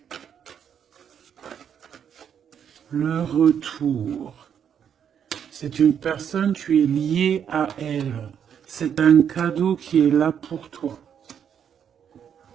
le retour, c'est une personne, tu es lié à elle. C'est un cadeau qui est là pour toi.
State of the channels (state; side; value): quieter; left; 8.3 dB